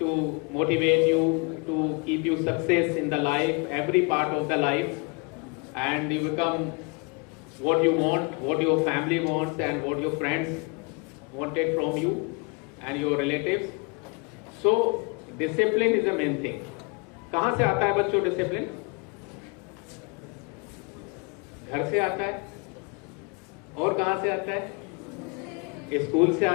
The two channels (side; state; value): right; quieter; 32.3 dB